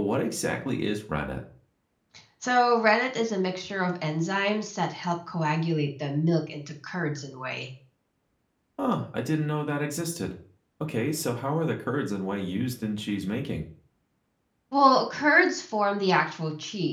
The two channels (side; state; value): both; identical; correlation 1.00